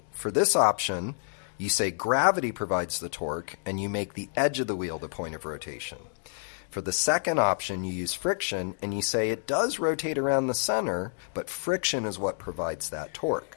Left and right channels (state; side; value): silent; right; digital silence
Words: for this option, you say gravity provides the torque, and you make the edge of the wheel the point of rotation. For the second option, you use friction, and you say it does rotate around the center, but friction is what provides that torque.